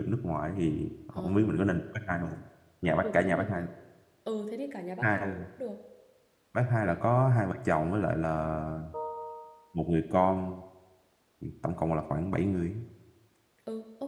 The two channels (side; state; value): both; identical; correlation 1.00